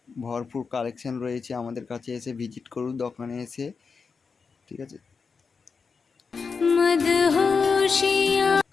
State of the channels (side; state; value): right; quieter; 5.2 dB